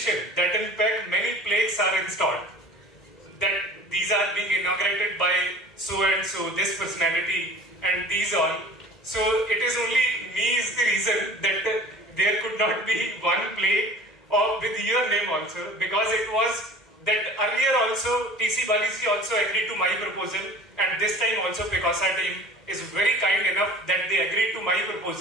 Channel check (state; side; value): normal; both; correlation 0.42